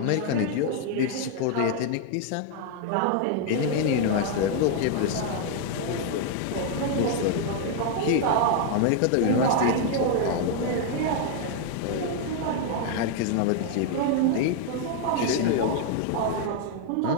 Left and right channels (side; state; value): both; different; correlation 0.00